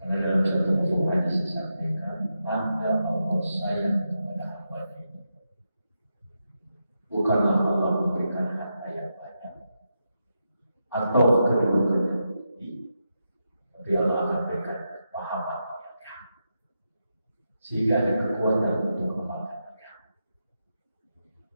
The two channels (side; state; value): both; inverted; correlation -0.86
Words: Karena dalam satu buku hadis disampaikan, tanda Allah sayang kepada hamba ini bukanlah Allah memberikan harta yang banyak atau kedudukan yang tinggi, tapi Allah akan berikan kepahaman yang kamu, sehingga ada kekuatan untuk kembangkan kamu.